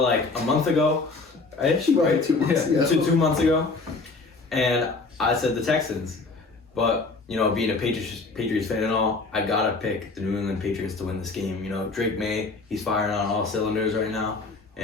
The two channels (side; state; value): right; quieter; 3.8 dB